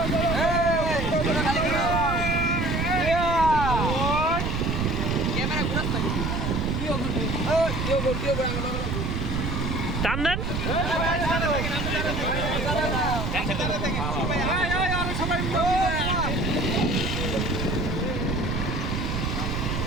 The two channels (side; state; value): right; noise; rumble, 2 dB below the sound